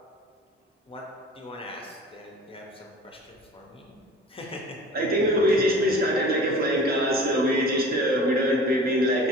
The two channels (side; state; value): both; normal; correlation 0.42